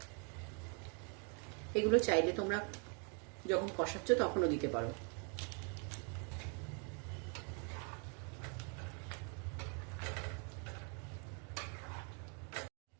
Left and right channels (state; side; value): quieter; left; 38.0 dB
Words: এগুলো চাইলে তোমরা যখন কষাচ্ছ তখনও দিতে পারো।